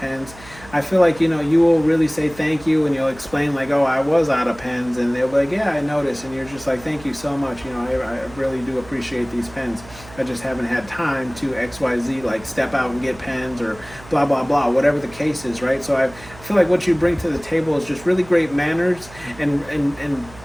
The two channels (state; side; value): noise; right; hum, 20 dB below the sound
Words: I feel like, you will really say thank you, and you'll explain like, oh, I was out of pens, and they'll be like, yeah, I noticed, and you're just like, thank you so much. I really do appreciate these pens. I just haven't had time to XYZ, like step out and get pens or blah, blah, blah, whatever the case is, right? So I feel like what you bring to the table is just really great manners and